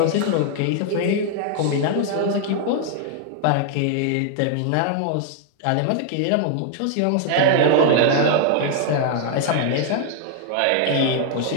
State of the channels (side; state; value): both; different; correlation -0.01